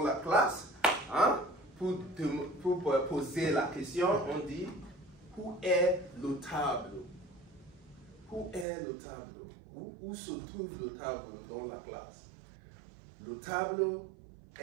la classe. Pour poser la question, on dit où est le tableau? Où est le tableau? Où se trouve le tableau dans la classe? Le tableau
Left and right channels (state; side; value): drops out; left; at 8.7 s